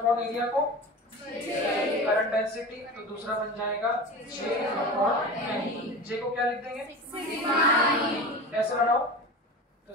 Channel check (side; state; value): both; normal; correlation 0.31